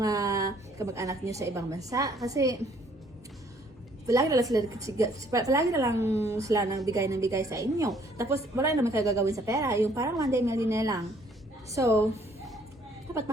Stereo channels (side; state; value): both; normal; correlation 0.63